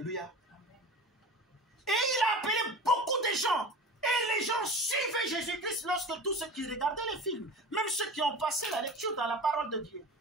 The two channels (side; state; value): both; normal; correlation 0.35